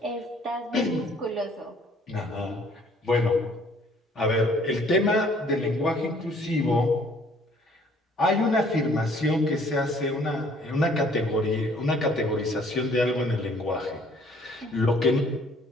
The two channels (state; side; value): normal; both; correlation 0.59